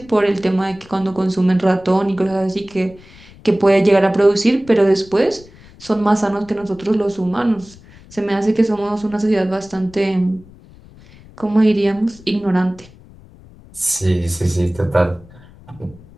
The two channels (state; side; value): noise; left; rumble, 23 dB below the sound